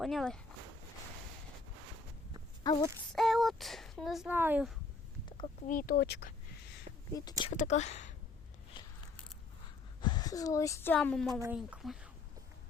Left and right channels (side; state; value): right; quieter; 3.9 dB